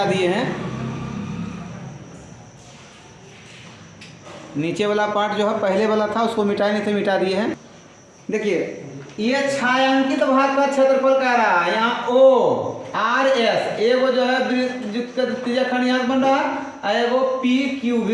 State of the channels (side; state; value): both; identical; correlation 1.00